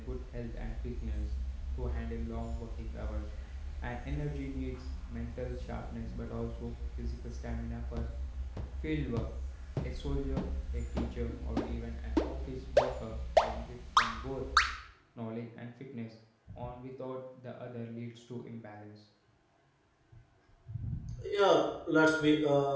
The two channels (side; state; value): both; identical; correlation 1.00